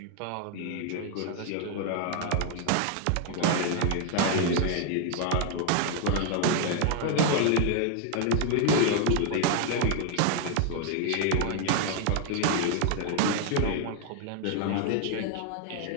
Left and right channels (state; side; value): different; both; correlation 0.00